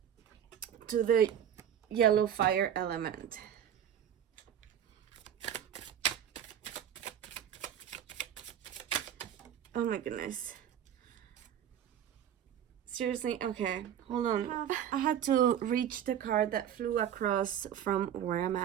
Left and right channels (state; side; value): quieter; left; 9.7 dB